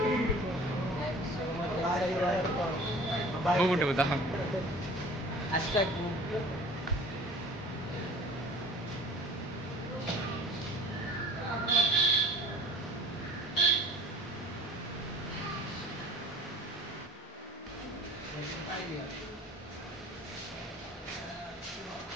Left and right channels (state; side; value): normal; both; correlation 0.45